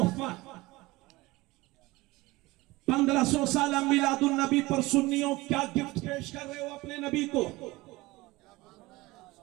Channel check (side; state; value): left; quieter; 20.8 dB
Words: 1500 साल मिलादुन नबी पर सुन्नियों क्या गिफ्ट पेश कर रहे हो अपने नबी को।